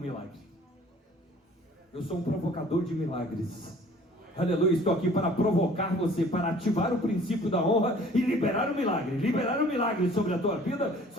milagre. Eu sou um provocador de milagres. Aleluia, estou aqui para provocar você, para ativar o princípio da honra e liberar o milagre sobre a tua vida,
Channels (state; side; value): normal; both; correlation 0.52